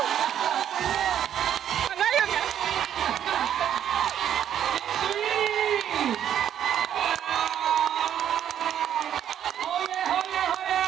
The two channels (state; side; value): quieter; left; 10.0 dB